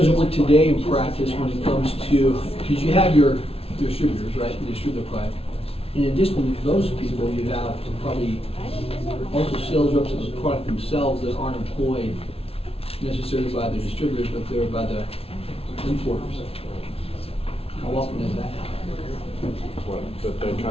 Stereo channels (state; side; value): late; right; 0.28 ms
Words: it work today in practice when it comes to, because you have your distributors, right, the distributor product. In addition to those people, you have probably also sales reps of the product themselves that aren't employed necessarily by the distributors, but they're by the importers. How often does that happen? What, that they